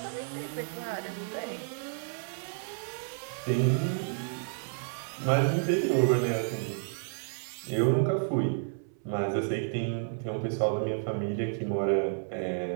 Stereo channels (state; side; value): silent; left; 57 dB below the other